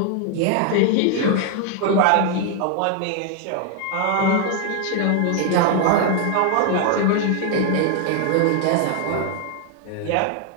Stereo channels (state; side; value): different; both; correlation 0.00